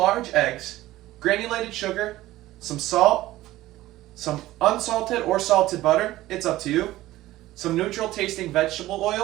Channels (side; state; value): left; quieter; 16.2 dB